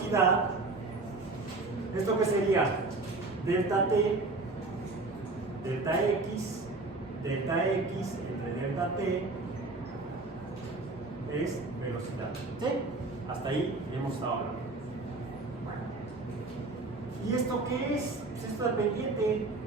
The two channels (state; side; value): quieter; left; 3.3 dB